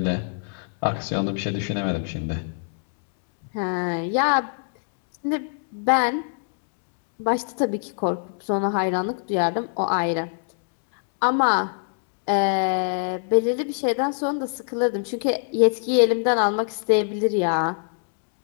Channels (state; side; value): silent; right; digital silence